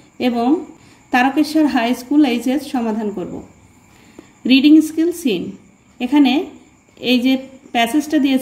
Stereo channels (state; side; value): identical; both; correlation 1.00